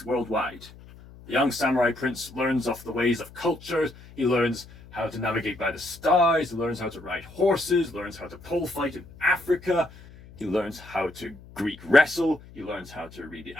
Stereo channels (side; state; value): left; noise; hum, 20 dB below the sound